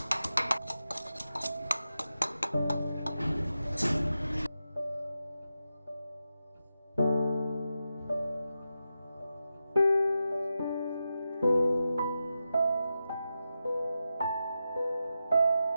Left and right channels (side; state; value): both; inverted; correlation -0.90